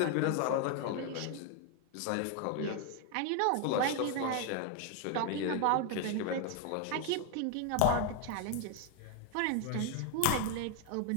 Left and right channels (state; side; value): different; both; correlation 0.01